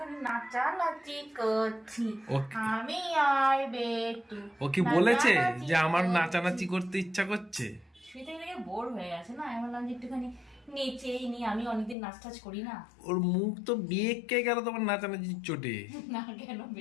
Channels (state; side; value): drops out; right; at 12.0 s